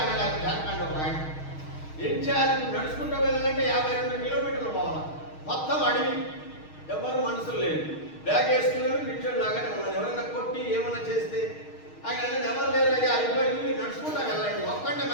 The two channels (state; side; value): late; right; 6.4 ms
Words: ఆయన. జార్ఖండ్ ఒక ఆయన. ఏం చేయాలి? ఇప్పుడు నడుచుకుంటూ వెళ్ళాలంటే 52 కిలోమీటర్లు పోవాలి. మొత్తం అడవి, ఎవరు మనుషులు లేదు. బ్యాగ్ వేసుకున్నాడు, కూర్చొని లాగానే ఉన్నాడు. ఎవరైనా కొట్టి ఏమైనా చేస్తే ఆయన ఎవరు లేరు, అయ్యా అయిపోయింది, మీరు నడుచుకుంటా వెళ్ళండి, ఒక్కడే